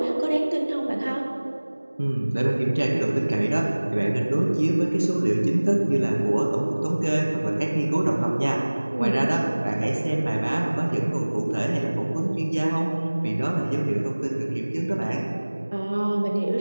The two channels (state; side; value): inverted; both; correlation -1.00